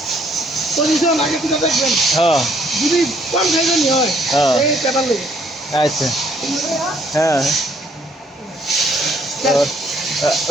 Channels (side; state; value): both; normal; correlation 0.65